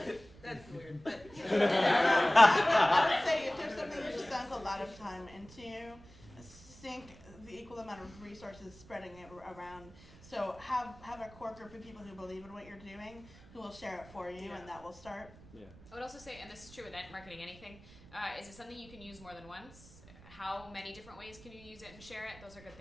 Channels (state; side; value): noise; right; rumble, 21 dB below the sound